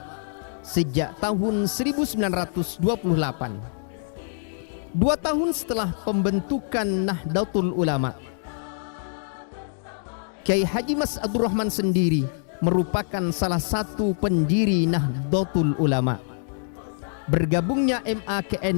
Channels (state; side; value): silent; right; digital silence